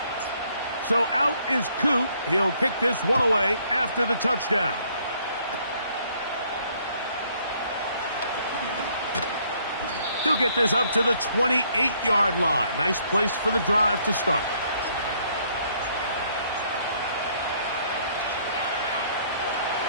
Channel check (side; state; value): both; inverted; correlation -0.66